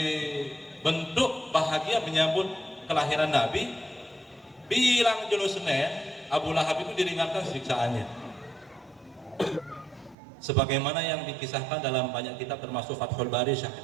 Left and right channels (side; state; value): left; drops out; at 10.2 s